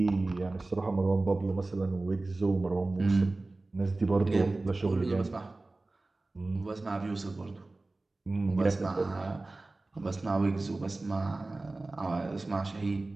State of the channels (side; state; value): left; quieter; 3.1 dB